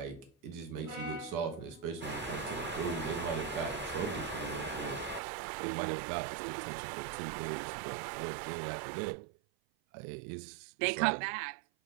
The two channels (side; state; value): left; drops out; at 5.2 s